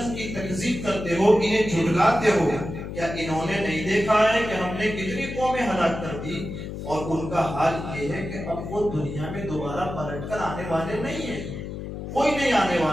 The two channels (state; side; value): noise; left; hum, 8 dB below the sound